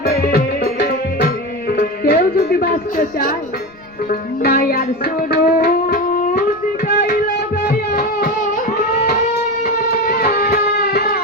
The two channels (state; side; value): noise; right; rumble, 28 dB below the sound